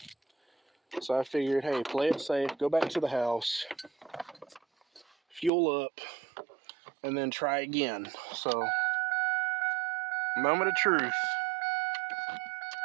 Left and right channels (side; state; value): left; drops out; at 5.5 s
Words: So I figured, hey, play it safe, go back to the house, fuel up, and then try again. So, moment of truth.